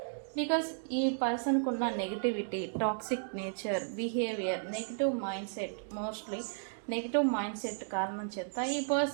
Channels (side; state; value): left; silent; digital silence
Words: బికాస్ ఈ పర్సన్కు ఉన్న negativity, toxic nature, behaviour, negative mind set, mostly negative mind set కారణం చేత ఈ